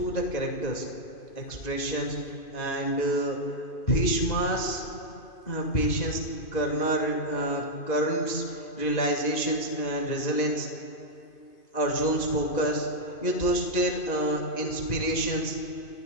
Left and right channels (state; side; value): late; right; 2.5 ms